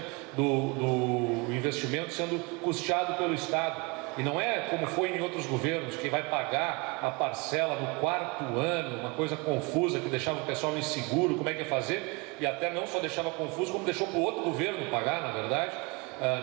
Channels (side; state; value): left; quieter; 28.4 dB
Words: do investimento sendo custeado pelo estado. E não é como foi em outros governos, que vai pagar a parcela no 4º ano, uma coisa confusa que deixava o pessoal inseguro, como é que ia fazer, e até não só deixava confuso, como deixou para o outro governo pagar, na verdade.